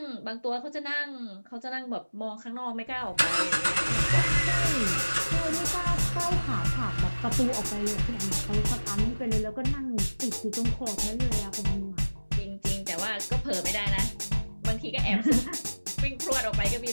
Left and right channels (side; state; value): both; inverted; correlation -1.00